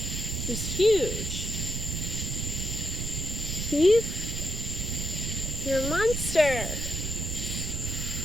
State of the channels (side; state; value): right; noise; rumble, 3 dB below the sound